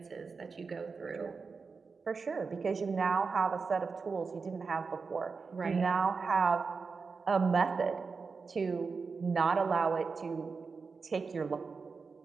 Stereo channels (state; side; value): quieter; left; 4.8 dB